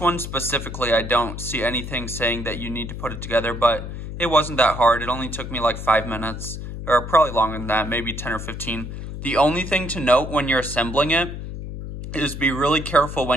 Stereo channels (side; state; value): left; noise; hum, 8 dB below the sound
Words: specifically, I don't see anything saying that you need to put it together, but it wasn't that hard. It only took me like 5 minutes, or probably longer than that, maybe 10 or 15. The only thing to note when you're assembling it is be really careful